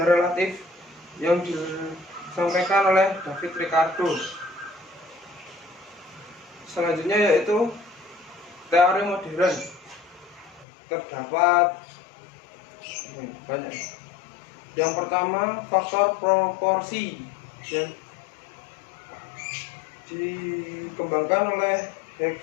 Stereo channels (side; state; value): right; drops out; at 10.7 s